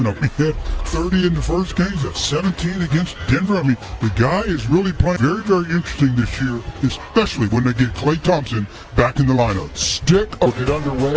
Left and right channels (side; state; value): both; identical; correlation 1.00